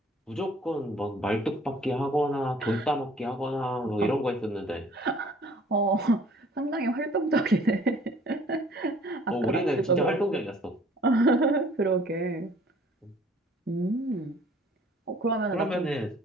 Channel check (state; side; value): normal; both; correlation 0.54